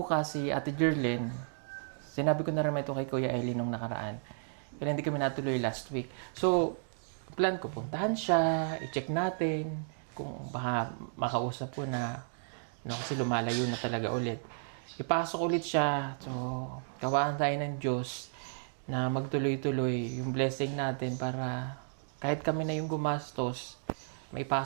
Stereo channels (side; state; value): left; silent; digital silence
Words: si Ate Jerlyn. Sinabi ko na rin ito kay Kuya Eli nung nakaraan. Kaya hindi kami natuloy last week. So, plan ko, puntahan siya, i-check natin kung baka makausap ko na kasi lumalayo na talaga ulit. Ipasok ulit siya. So, kawaan tayo ng Diyos na magtuloy-tuloy yung blessing natin para kahit kami na yung gumastos,